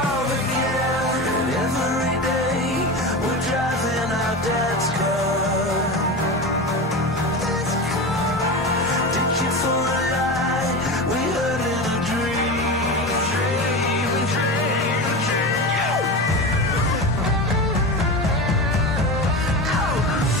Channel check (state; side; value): normal; both; correlation 0.25